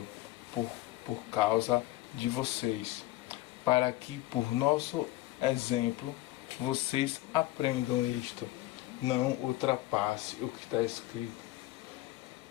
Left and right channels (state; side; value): quieter; right; 16.9 dB